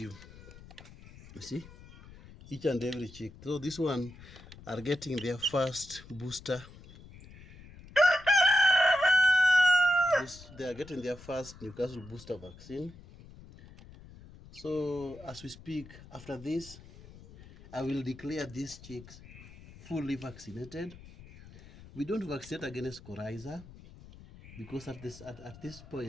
You see? Each and every chick. So this one are getting their first booster. They are getting their first Newcastle booster vaccine. So as we speak, after this, I will declare these chicks fully vaccinated. We don't vaccinate against coryza. because at this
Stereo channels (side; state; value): left; noise; rumble, 19 dB below the sound